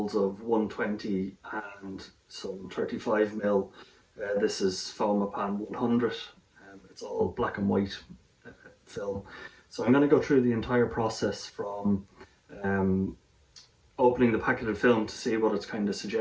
of 120 and some 35 mil. This is Fomapan 100. It's all black and white film. So I'm going to go through the entire process from um, opening the packet of film to see what it's kind of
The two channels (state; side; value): identical; both; correlation 1.00